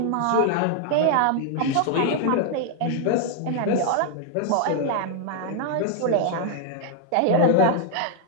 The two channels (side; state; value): both; different; correlation 0.00